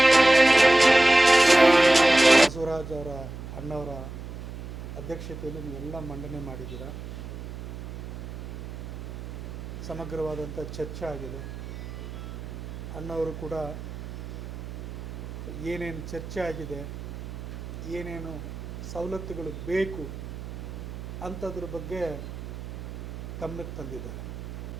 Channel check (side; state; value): right; noise; hum, 10 dB below the sound